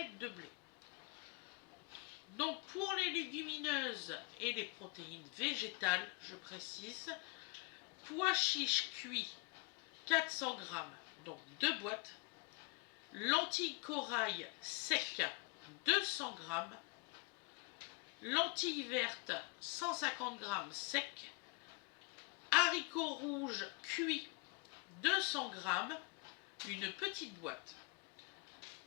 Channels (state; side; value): quieter; right; 31.1 dB